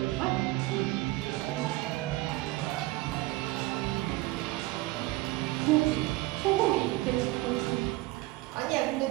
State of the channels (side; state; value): left; quieter; 19.7 dB